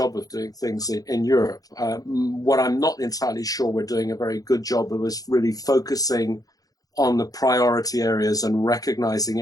of doing things in Europe. What I'm not entirely sure we're doing a very good job of is really focusing on the priority areas and recognizing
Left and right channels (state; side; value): late; right; 0.18 ms